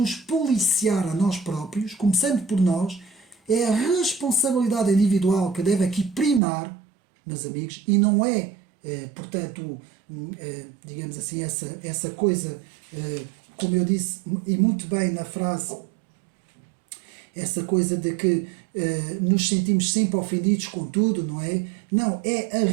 policiar a nós próprios, começando por nós. É a responsabilidade individual que deve aqui primar, meus amigos, e não é, portanto, digamos assim, essa coisa, como eu disse, e muito bem na frase, essa coisa de que nos sentimos sempre ofendidos com tudo, não é? Não, é a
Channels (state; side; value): drops out; left; at 6.4 s